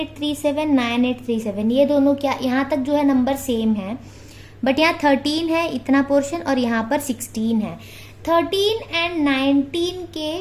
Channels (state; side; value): identical; both; correlation 1.00